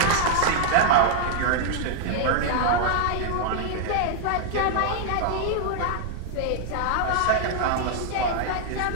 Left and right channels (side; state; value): both; different; correlation 0.00